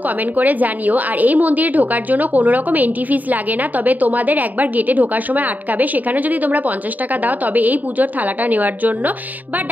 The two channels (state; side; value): late; left; 0.081 ms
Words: কমেন্ট করে জানিও। আর এই মন্দিরে ঢোকার জন্য কোনো রকম এন্ট্রি ফিস লাগে না, তবে তোমাদের একবার গেটে ঢোকার সময় আটকাবে। সেখানে যদি তোমরা 50 টাকা দাও, তবে এই পুজোর থালাটা নেওয়ার জন্য বা